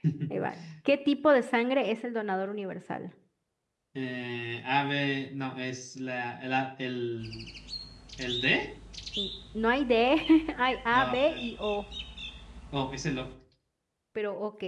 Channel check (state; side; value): identical; both; correlation 1.00